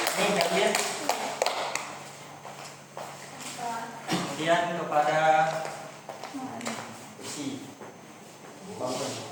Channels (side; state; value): both; identical; correlation 1.00